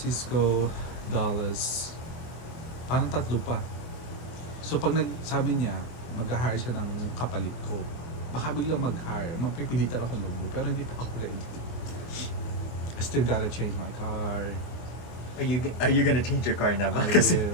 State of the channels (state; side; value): late; right; 24 ms